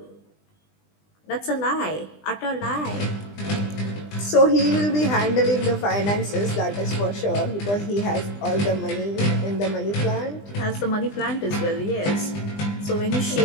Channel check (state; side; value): late; right; 20 ms